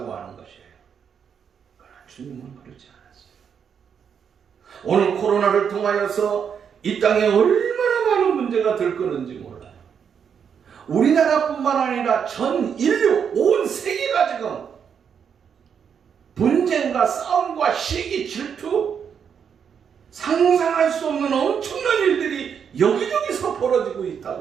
하는 것이에요. 그러나 주님은 그렇지 않았어요. 오늘 코로나를 통하여서 이 땅에 얼마나 많은 문제가 들끓는지 몰라요. 우리나라뿐만 아니라 전 인류, 온 세계가 지금 분쟁과 싸움과 시기, 질투, 상상할 수 없는 엄청난 일들이 여기저기서 벌어지고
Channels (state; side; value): quieter; left; 7.4 dB